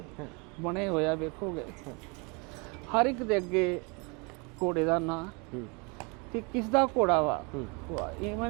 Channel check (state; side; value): quieter; left; 30.9 dB